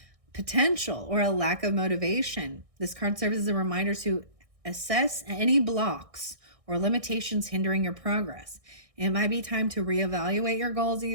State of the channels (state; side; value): late; left; 1.6 ms